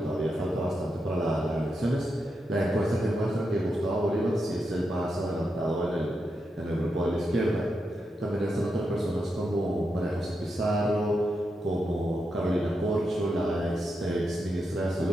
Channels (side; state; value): both; normal; correlation 0.85